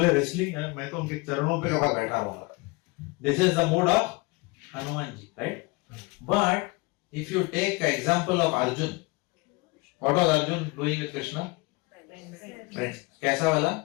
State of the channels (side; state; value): right; quieter; 25.8 dB